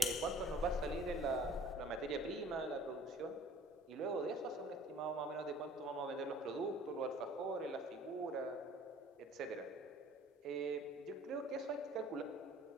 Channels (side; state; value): both; normal; correlation 0.51